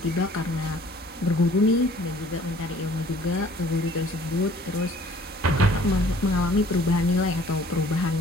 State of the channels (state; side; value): normal; both; correlation 0.54